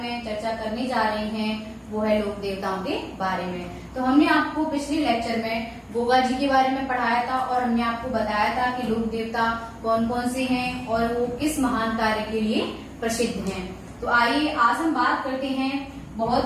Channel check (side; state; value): both; identical; correlation 1.00